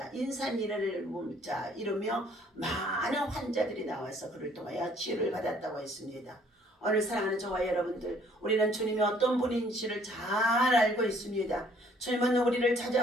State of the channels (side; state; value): both; normal; correlation 0.60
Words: 인산이를 이루며 많은 환자들이 나와서 그를 통하여 치유를 받았다고 했습니다. 오늘 사랑하는 저와 여러분들, 우리는 주님이 어떤 분인지를 잘 알고 있습니다. 주님은 우리를